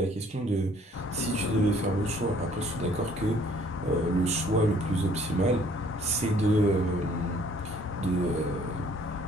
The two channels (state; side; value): normal; both; correlation 0.59